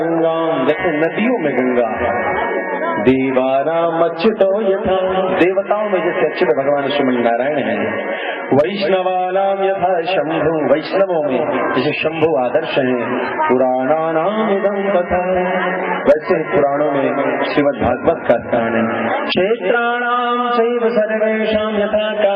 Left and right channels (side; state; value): both; identical; correlation 1.00